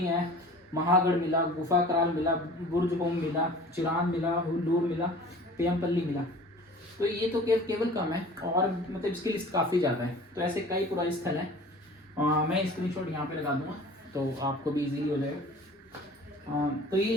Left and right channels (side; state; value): both; normal; correlation 0.44